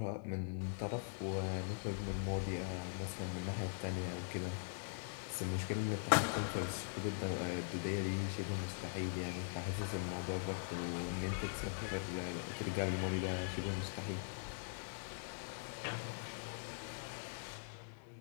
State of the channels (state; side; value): silent; right; digital silence